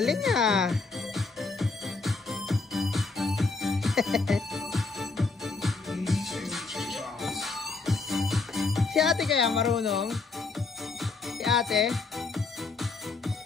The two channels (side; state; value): right; quieter; 4.0 dB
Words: ah. Si ate kaya marunong? Si ate?